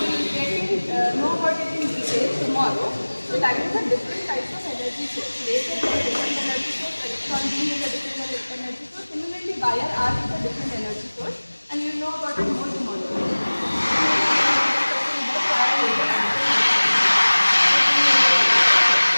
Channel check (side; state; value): both; inverted; correlation -1.00